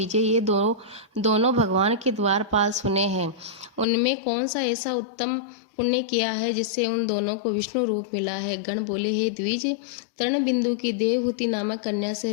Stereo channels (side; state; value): right; drops out; at 3.9 s